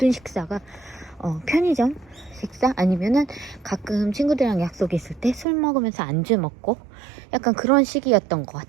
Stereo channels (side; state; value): left; drops out; at 5.5 s